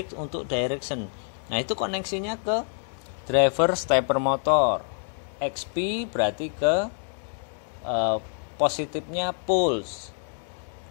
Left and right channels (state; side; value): silent; right; digital silence